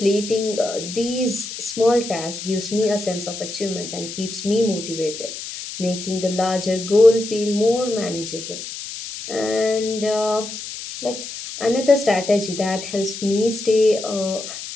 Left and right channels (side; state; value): left; noise; hiss, 9 dB below the sound